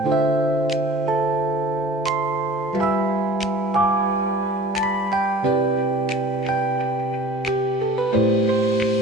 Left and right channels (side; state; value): both; normal; correlation 0.44